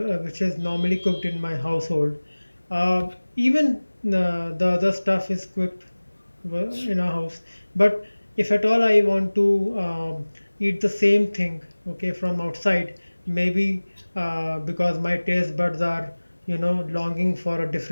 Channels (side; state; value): both; inverted; correlation -1.00